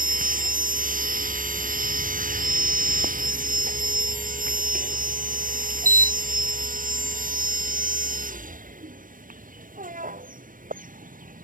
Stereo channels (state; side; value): late; left; 0.40 ms